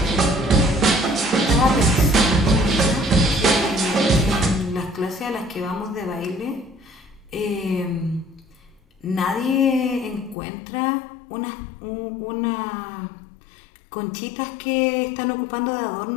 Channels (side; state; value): right; drops out; at 10.4 s